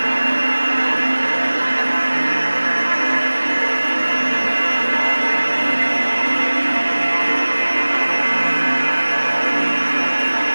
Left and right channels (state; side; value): inverted; both; correlation -1.00